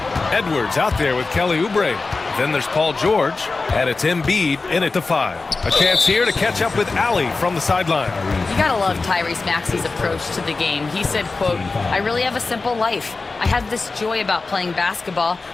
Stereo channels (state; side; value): quieter; right; 3.8 dB